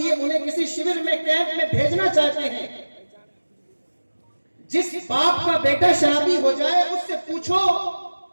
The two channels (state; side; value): inverted; both; correlation -1.00